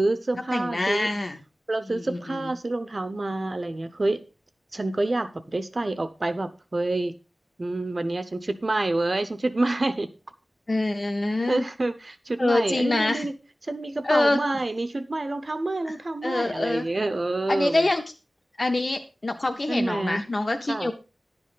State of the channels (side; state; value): both; normal; correlation 0.96